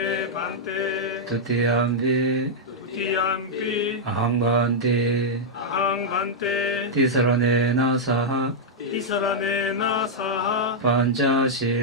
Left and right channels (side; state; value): both; normal; correlation -0.06